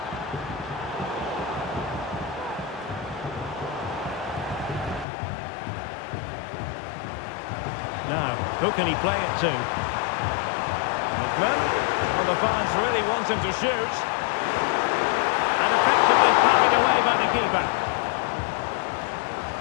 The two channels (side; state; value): right; drops out; at 5.1 s